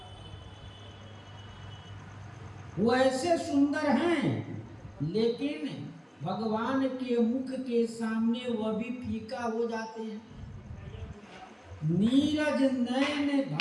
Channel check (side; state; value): both; identical; correlation 1.00